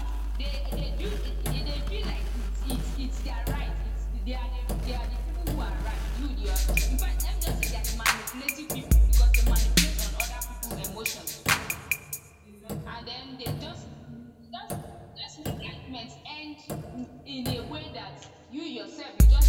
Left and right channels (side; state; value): both; identical; correlation 1.00